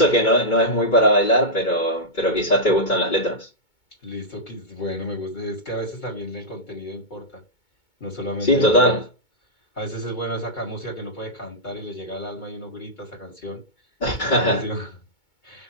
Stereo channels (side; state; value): right; late; 2.2 ms